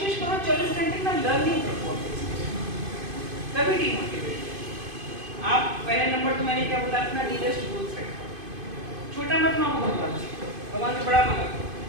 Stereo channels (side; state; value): left; late; 2.5 ms